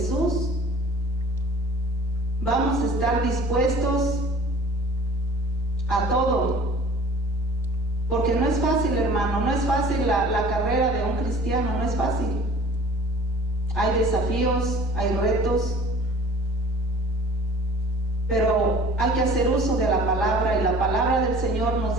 vamos a estar dispuestos a todo. Porque no es fácil, hermano, no es fácil la carrera de un cristiano, no es fácil. Hay desafíos, hay retos, pero hay que hacer uso de la palabra, y la palabra del Señor nos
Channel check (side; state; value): both; normal; correlation 0.48